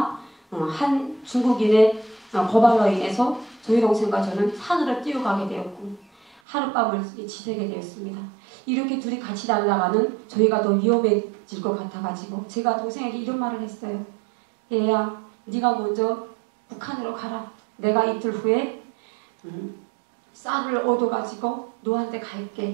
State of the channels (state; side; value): drops out; left; at 6.4 s